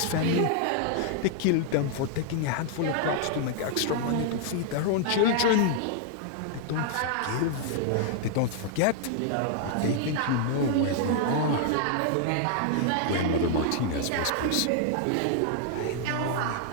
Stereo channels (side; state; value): both; different; correlation 0.00